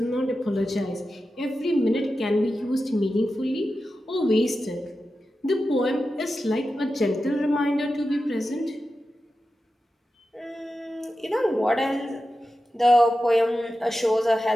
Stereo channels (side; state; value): both; normal; correlation 0.92